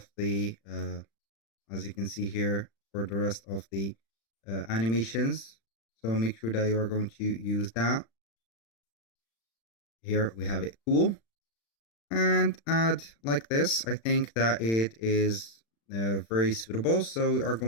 the, as you can see here, for the rest of the animations. So make sure that you are going to use that. Here we have it cool. And add like this. I think that it is very suitable. So we are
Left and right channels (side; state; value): right; late; 35 ms